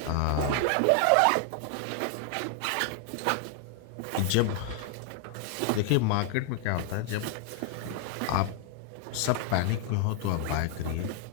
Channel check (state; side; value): different; both; correlation 0.00